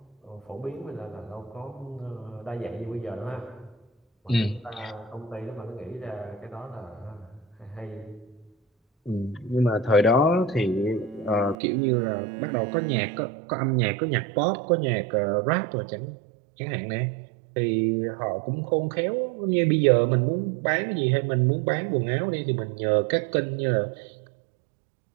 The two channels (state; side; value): drops out; left; at 11.6 s